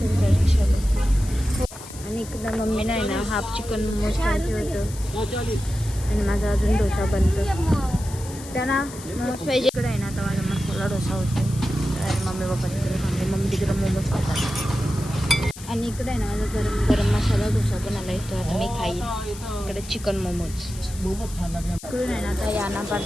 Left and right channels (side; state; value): left; noise; hiss, 15 dB below the sound